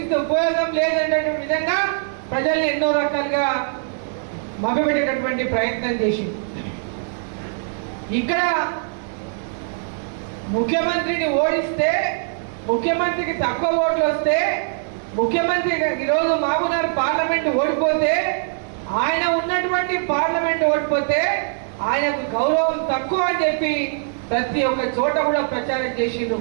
ఉపయోగం లేదనేటువంటి విధంగా ప్రజల్ని ఎన్నో రకాలుగా మభ్యపెట్టేటటువంటి ప్రయత్నం చేసింది. ఇక్కడ ముఖ్యమంత్రిని ఓడిస్తే, ముఖ్యమంత్రికి తక్కువ ఓట్లు వస్తే, ముఖ్యమంత్రి ఈరోజు మహబూబ్నగర్ పార్లమెంట్ ఓడిపోతే, ఆయన ఉన్నటువంటి పార్లమెంట్ ఓడిపోతే ఆయనకు గౌరవం తక్కువ అని చెప్పి ప్రతి ఒక్క చోట కూడా ప్రచారం చేసిండ్రు.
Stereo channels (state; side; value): silent; left; digital silence